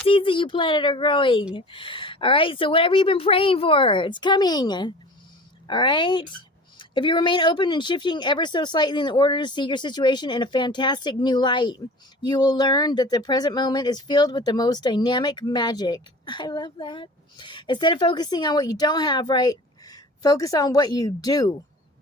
seeds that you planted are growing. All right. So whatever you've been praying for, it's coming. All right. If you remain open and shifting ever so slightly in order to see your situation in a fantastic new light, you will learn that the present moment is filled with the most dynamic magic. I love that. Instead of focusing on what you don't have, right? Focus on what you do.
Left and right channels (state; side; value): normal; both; correlation 0.40